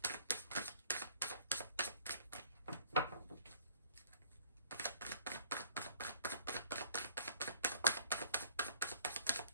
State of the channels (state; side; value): inverted; both; correlation -0.56